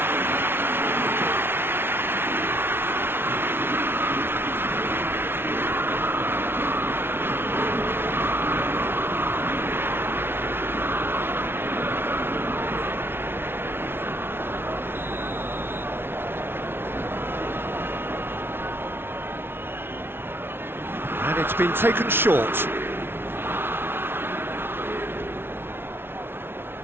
And it's been taken short.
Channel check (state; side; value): late; left; 0.11 ms